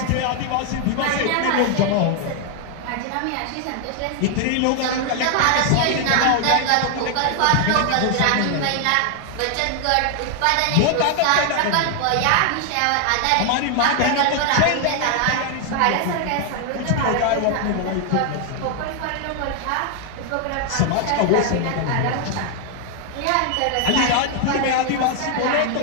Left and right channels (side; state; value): both; different; correlation 0.00